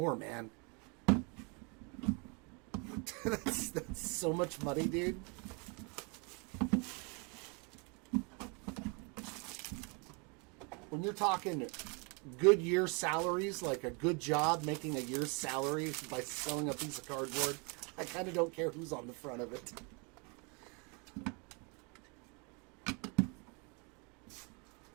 man. that's so much money, dude. When you're talking good year salaries, like a good job making a year's salary by selling a piece of cardboard, I kind of don't care who's on the front of it.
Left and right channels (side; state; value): left; quieter; 33.0 dB